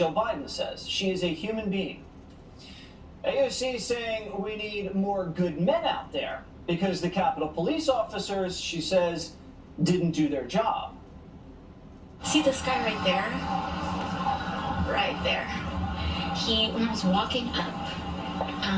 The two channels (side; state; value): both; identical; correlation 1.00